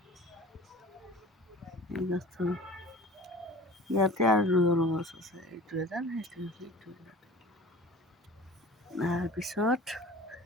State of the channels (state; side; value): normal; both; correlation 0.40